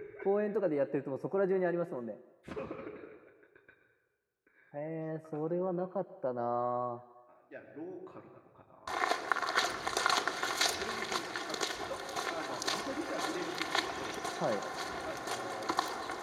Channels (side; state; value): both; identical; correlation 1.00